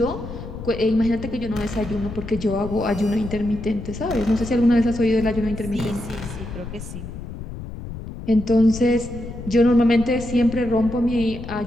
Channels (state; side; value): noise; left; rumble, 10 dB below the sound